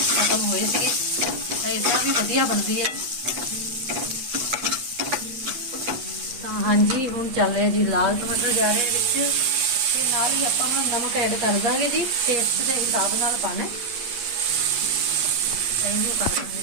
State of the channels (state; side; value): late; left; 8.3 ms